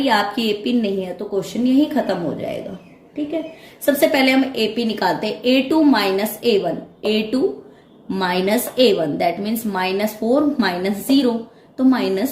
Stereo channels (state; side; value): identical; both; correlation 1.00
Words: आपकी एपी नहीं है तो क्वेश्चन यही खत्म हो जाएगा, ठीक है। सबसे पहले हम एपी निकालते हैं। A2 - A1 A2 - A1 that means -4 - 0 तो